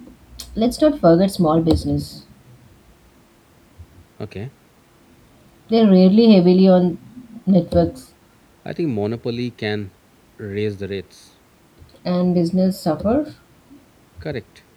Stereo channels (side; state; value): both; identical; correlation 1.00